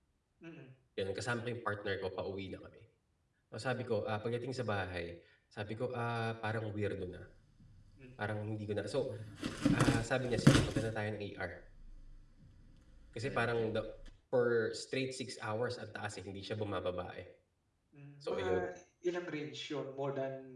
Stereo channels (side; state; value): both; identical; correlation 1.00